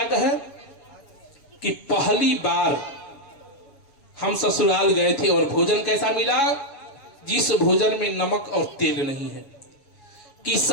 कहे कि पहली बार हम ससुराल गए थे और भोजन कैसा मिला, जिस भोजन में नमक और तेल नहीं है। कि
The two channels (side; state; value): right; late; 7.2 ms